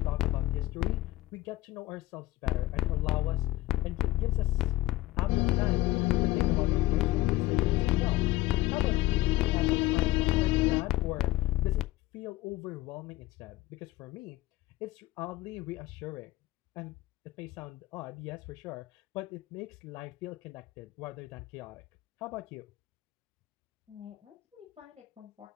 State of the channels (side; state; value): right; quieter; 17.4 dB